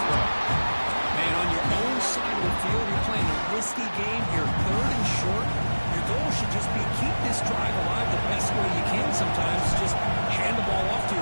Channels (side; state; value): both; inverted; correlation -1.00